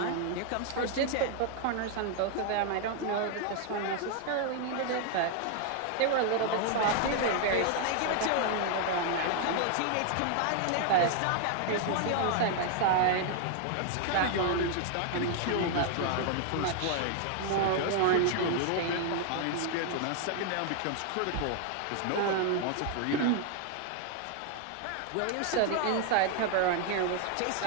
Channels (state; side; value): different; both; correlation 0.00